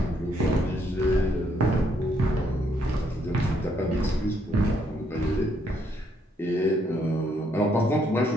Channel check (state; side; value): normal; both; correlation 0.72